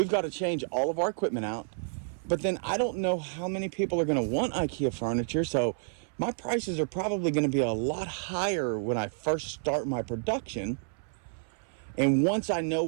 got to change all of our equipment out. But then I don't know how many people are going to want IKEA furniture, so my prices are probably going to be a lot higher when I first start my production. And once I know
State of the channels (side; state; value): left; silent; 58 dB below the other